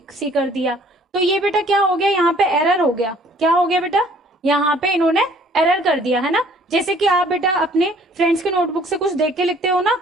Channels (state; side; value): normal; both; correlation 0.57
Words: सी कर दिया। तो ये बेटा क्या हो गया, यहाँ पे एरर हो गया। क्या हो गया बेटा, यहाँ पे इन्होंने एरर कर दिया, है ना। जैसे कि आप बेटा अपने फ्रेंड्स के नोटबुक से कुछ देख के लिखते हो ना,